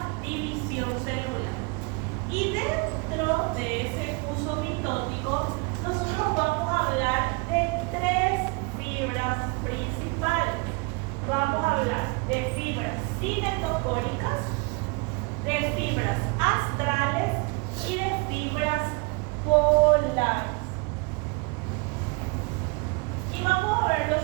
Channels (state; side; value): quieter; left; 29.0 dB